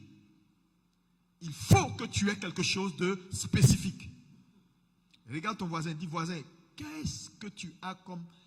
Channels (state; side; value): identical; both; correlation 1.00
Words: il faut que tu aies quelque chose de spécifique. Regarde ton voisin, dis voisin, qu'est-ce que tu as comme